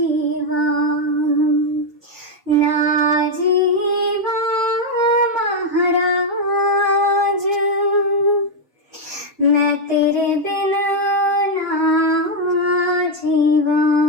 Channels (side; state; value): both; normal; correlation 0.02